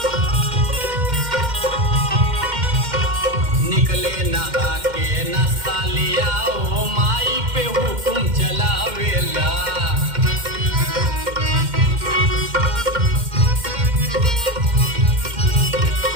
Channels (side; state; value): left; late; 2.1 ms